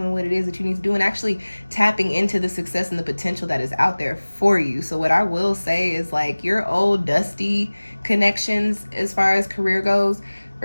what it is that you need to do, and actually tapping into the success and the potential that is out there for you. So what I will say is, like, your old dusty connections as far as career goes,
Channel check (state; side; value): inverted; both; correlation -1.00